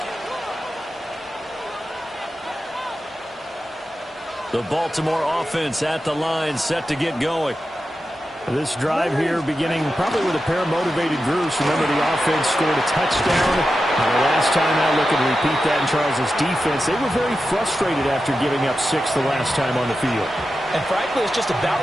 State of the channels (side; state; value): both; normal; correlation 0.91